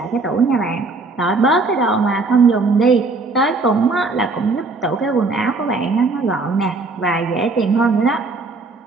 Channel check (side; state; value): left; quieter; 3.6 dB